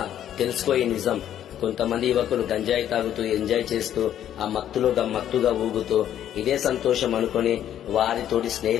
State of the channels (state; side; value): quieter; right; 10.7 dB